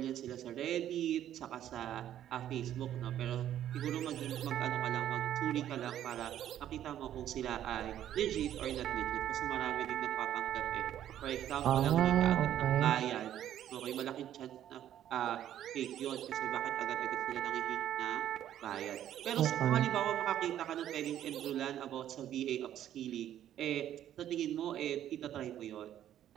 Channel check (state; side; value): quieter; left; 11.3 dB